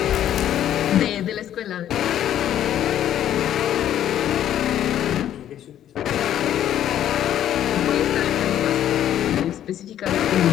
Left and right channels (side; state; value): right; quieter; 11.1 dB